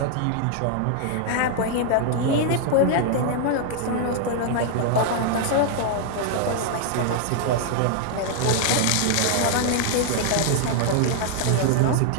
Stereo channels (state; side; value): different; both; correlation 0.00